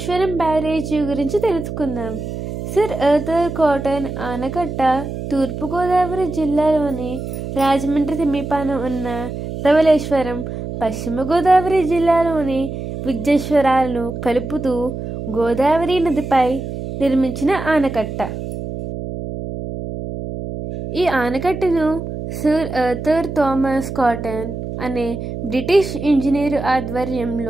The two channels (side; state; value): right; noise; hum, 7 dB below the sound